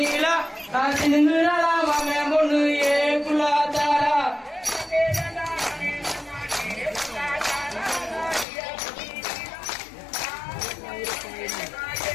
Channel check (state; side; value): drops out; right; at 8.5 s